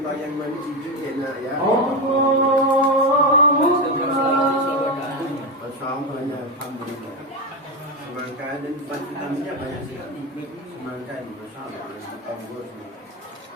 yang mana cucu dia nak ya. Masyaallah, alhamdulillah. Semangka dan vitaminnya banyak sekali. Semangka ini masyaallah, bagus.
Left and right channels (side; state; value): both; normal; correlation 0.13